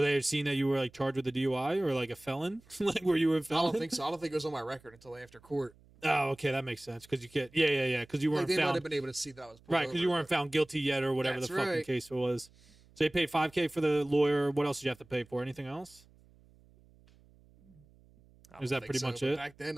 they have seen that you were like charged with a DUI or like a felon? Like were you a I felon? don't think so. I don't think it was on my record until after court. Oh, okay, that makes sense because you can't. Yeah. Because you Like, weren't they might found have been able to see that I was pulled right because you over, weren't found guilty yet or whatever That's the fucking right. case was. So you paid $5K for the lawyer. What else did you have to pay for? Anything else? but I Is don't that think pretty so, much but it? Back then,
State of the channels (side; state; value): right; noise; hum, 28 dB below the sound